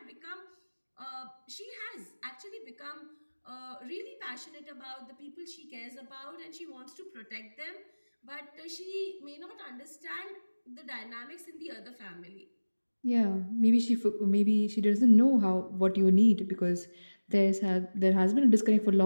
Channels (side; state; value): both; inverted; correlation -1.00